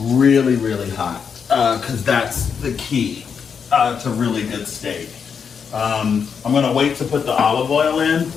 hot. Because that's the key to really good steak. I'm going to wait to put the olive oil in.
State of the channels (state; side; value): quieter; right; 6.6 dB